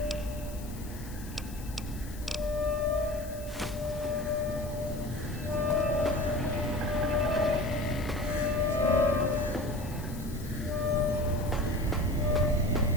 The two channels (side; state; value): left; noise; hiss, 17 dB below the sound